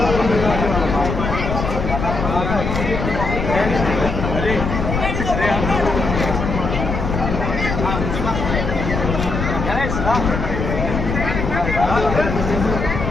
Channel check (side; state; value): left; noise; rumble, 3 dB below the sound